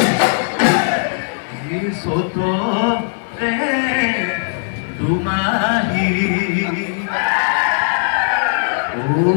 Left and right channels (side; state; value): right; silent; 67 dB below the other